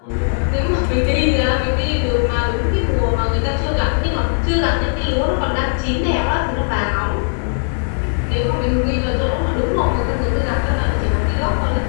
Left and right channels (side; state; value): right; silent; digital silence